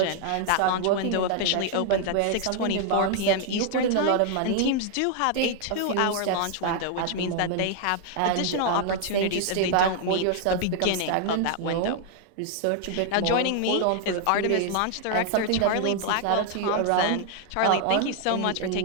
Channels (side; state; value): both; different; correlation 0.00